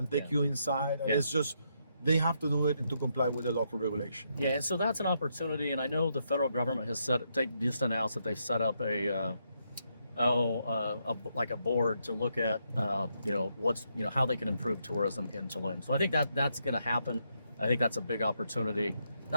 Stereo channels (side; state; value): both; inverted; correlation -0.78